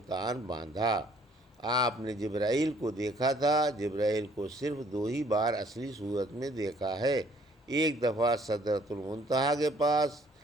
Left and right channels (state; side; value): normal; both; correlation 0.61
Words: باندھا۔ آپ نے جبرائیل کو دیکھا تھا۔ جبرائیل کو صرف 2 ہی بار اصلی صورت میں دیکھا ہے، ایک دفعہ سدرۃ المنتہا کے پاس